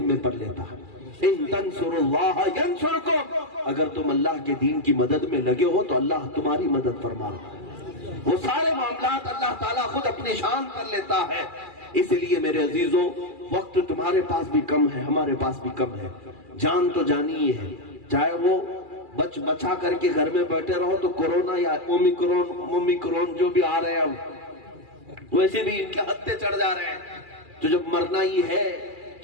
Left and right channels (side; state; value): left; late; 2.4 ms